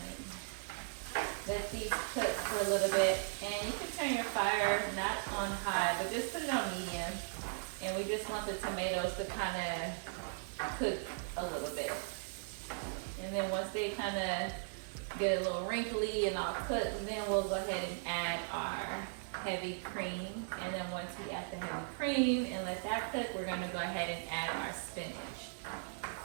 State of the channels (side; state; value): left; silent; 53 dB below the other